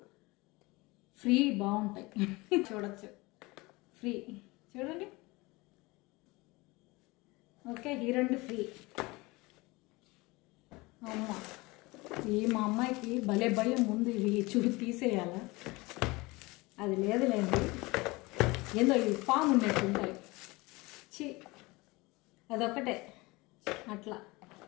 ఫ్రీ బాగుంటాయి. చూడొచ్చు, ఫ్రీ చూడండి. ఓకే, ఈ 2 ఫ్రీ. అమ్మ, మా అమ్మాయికి భలే భయం ముందు ఇవి తీసేయాలా, అది లేదులేండి. ఏందో ఇవి పాము ఉన్నట్టు ఉంటాయి. అదొక్కటే అట్లా.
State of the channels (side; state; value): right; quieter; 23.2 dB